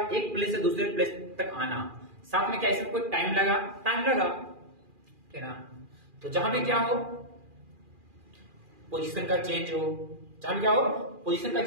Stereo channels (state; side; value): late; left; 2.4 ms